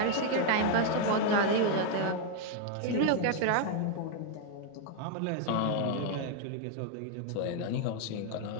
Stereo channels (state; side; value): different; both; correlation 0.00